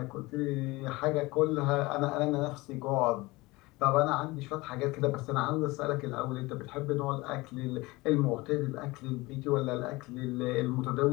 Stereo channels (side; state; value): right; quieter; 21.9 dB